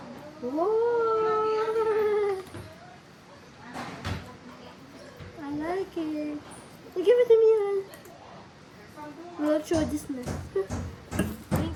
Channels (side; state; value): both; identical; correlation 1.00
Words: Whoa! I like it. Give it to me, man. We'll show this next.